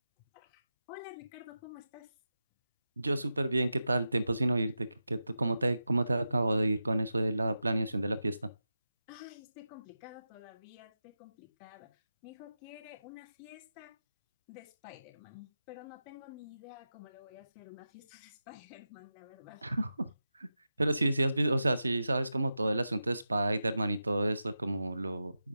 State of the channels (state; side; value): inverted; both; correlation -0.91